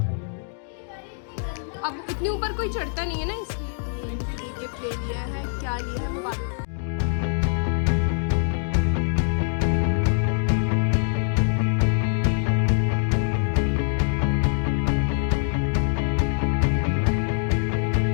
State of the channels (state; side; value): silent; right; digital silence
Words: अब इतने ऊपर कोई चढ़ता नहीं है ना, इसलिए गिफ्ट ले लिया है। क्या लिया है वो बात।